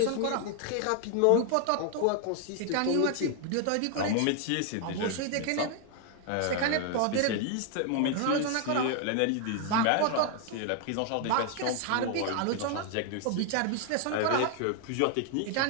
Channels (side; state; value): both; different; correlation 0.00